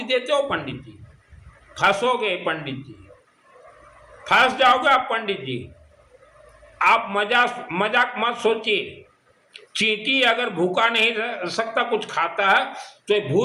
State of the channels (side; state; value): both; identical; correlation 1.00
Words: देते हो पंडित जी। फंसोगे पंडित जी, फंस जाओगे आप पंडित जी। आप मजाक मत सोचिए। चींटी अगर भूखा नहीं रह सकता, कुछ खाता है, तो